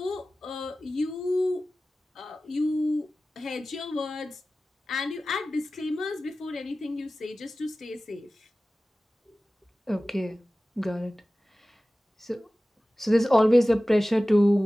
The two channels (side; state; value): both; normal; correlation 0.96